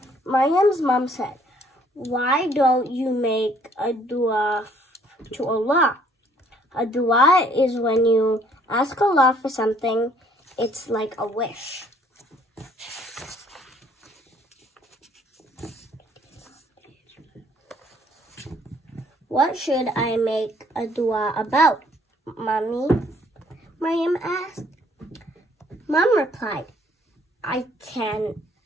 Maryam's mom said, "Why don't you make a dua to Allah?" A dua is when you ask Allah for something. It's like a wish. "What should I make a dua about, Mommy?" Maryam asked. Mom replied, it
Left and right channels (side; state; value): both; normal; correlation 0.62